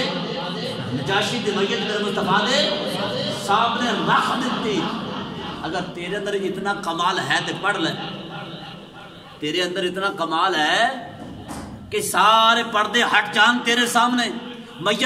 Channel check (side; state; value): both; identical; correlation 1.00